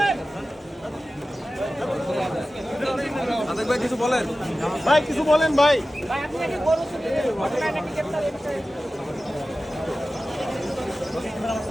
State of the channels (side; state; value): both; normal; correlation 0.95